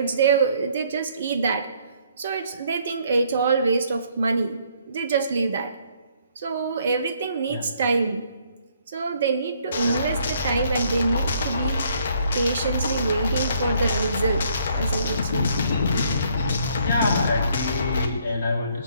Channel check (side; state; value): both; inverted; correlation -0.66